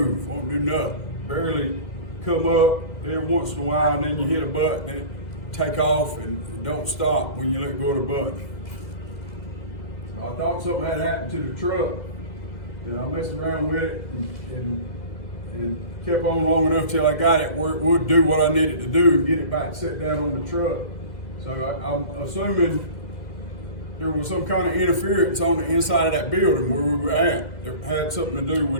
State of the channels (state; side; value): late; right; 2.0 ms